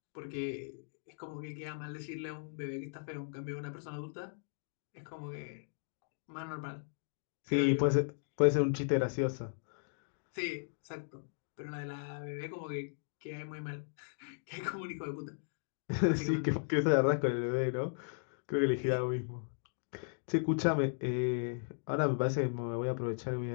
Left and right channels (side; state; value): right; silent; digital silence